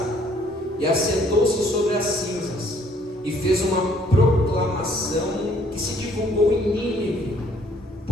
e assentou-se sobre as cinzas e fez uma proclamação que se divulgou em Nínive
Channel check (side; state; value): both; normal; correlation 0.62